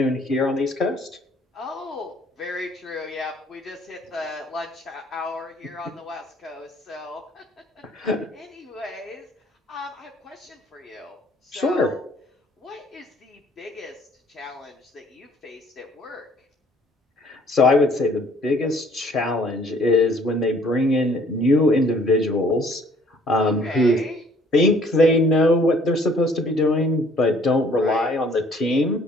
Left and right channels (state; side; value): normal; both; correlation 0.59